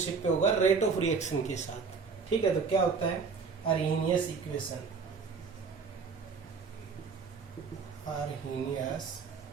पे होगा रेट ऑफ रिएक्शन के साथ। ठीक है, तो क्या होता है अरेनियस इक्वेशन। अरेनियस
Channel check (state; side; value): quieter; left; 5.2 dB